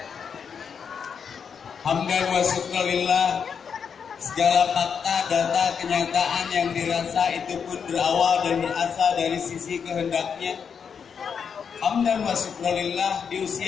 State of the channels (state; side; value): quieter; right; 6.7 dB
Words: Hamdan wa syukurillah, segala fakta, data, kenyataan yang dirasa itu pun berawal dan berasal dari sisi kehendaknya. Hamdan wa syukurillah, di